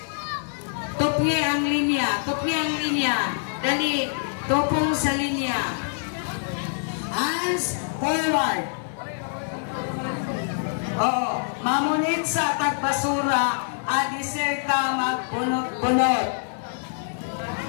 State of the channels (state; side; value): silent; right; 62 dB below the other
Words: tupye ang linya, tupye ang linya. Dali, tupong sa linya. Hands forward. Oo, mamunit sa tagbasura, adisir ka magbunot-bunot.